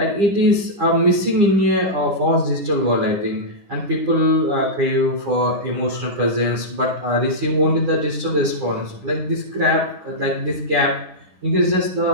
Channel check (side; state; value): left; late; 9.9 ms